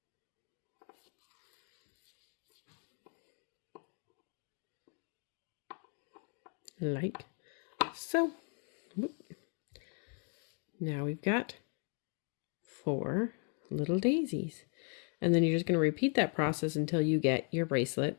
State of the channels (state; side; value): quieter; right; 39.1 dB